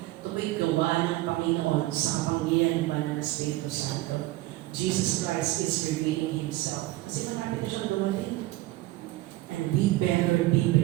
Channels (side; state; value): left; quieter; 17.7 dB